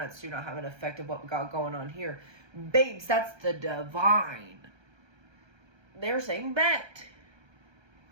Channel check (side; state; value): left; late; 1.3 ms